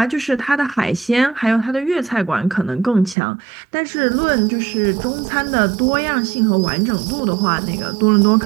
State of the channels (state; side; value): drops out; left; at 3.2 s